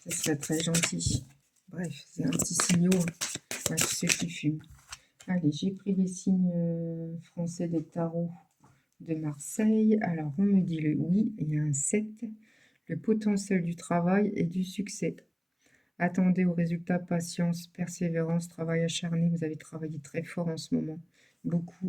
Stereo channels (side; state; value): both; identical; correlation 1.00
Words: ce serait très gentil. Bref, c'est un petit signal à tous ceux qui fument. Allez, j'ai pris les signes français des tarots de Marseille. Alors, on me dit le oui, il y a un 7. Le potentiel du travail et du succès. Attendez aux résultats, patience, persévérance, travail acharné. Vous avez travaillé très fort en ce moment.